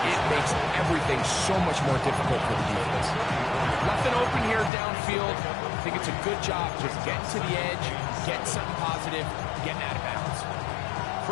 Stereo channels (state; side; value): drops out; right; at 4.7 s